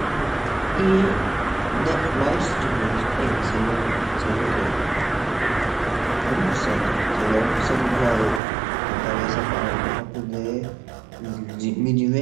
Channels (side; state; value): left; drops out; at 8.4 s